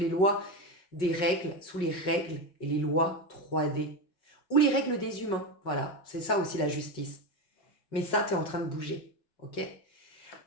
lois des règles, sous les règles et les lois 3D. Ou les règles des humains. Voilà, c'est ça aussi la justice. Mais ça, tu es en train de bouger. Ok?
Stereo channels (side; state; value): right; late; 5.4 ms